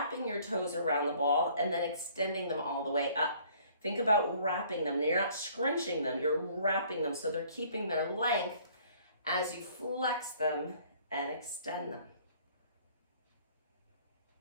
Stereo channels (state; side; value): inverted; both; correlation -0.57